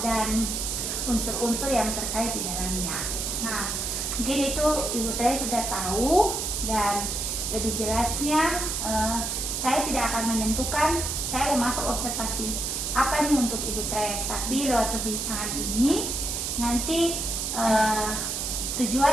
unsur-unsur yang terkait di dalamnya. Nah, mungkin itu Ibu Tres sudah tahu, dan lebih jelasnya saya tidak akan menentukan saya mau masuk observasi apa nih untuk Ibu Tres, tapi lewat perbincangan ini nanti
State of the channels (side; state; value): right; noise; hiss, 2 dB below the sound